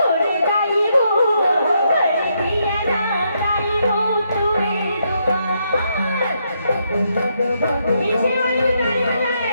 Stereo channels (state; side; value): inverted; both; correlation -0.77